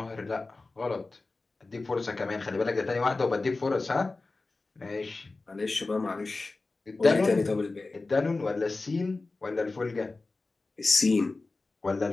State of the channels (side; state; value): right; quieter; 3.5 dB